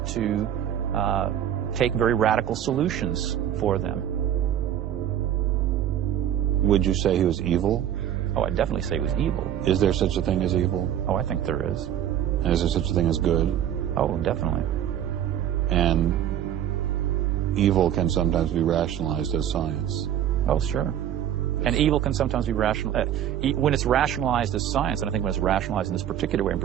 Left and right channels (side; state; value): left; quieter; 10.6 dB